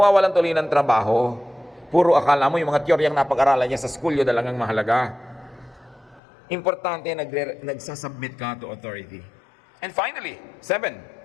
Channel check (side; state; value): right; drops out; at 6.2 s